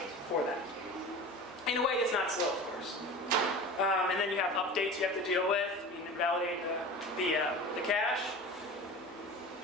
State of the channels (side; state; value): both; normal; correlation 0.34